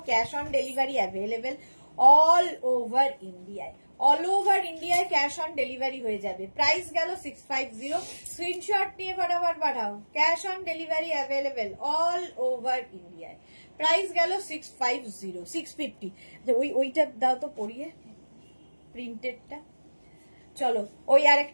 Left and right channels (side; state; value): both; inverted; correlation -1.00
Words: cash on delivery available all over ইন্ডিয়ায়। অল ওভার ইন্ডিয়ায় ক্যাশ অন ডেলিভারি হয়ে যাবে। প্রাইস গেল 650। স্ক্রিনশট নিয়ে ফটাফট পাঠাও। Cash on delivery available all over ইন্ডিয়ায়। প্রাইস গেল 650 650। ওইটা দাও তো পরিয়ে, প্রিন্টেডটা। চলো ওই আর